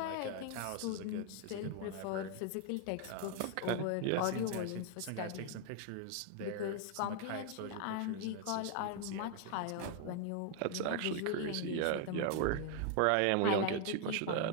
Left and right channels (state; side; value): different; both; correlation 0.00